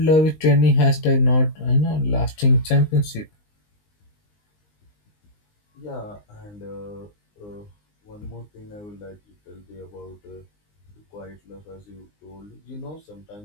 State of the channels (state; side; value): late; right; 19 ms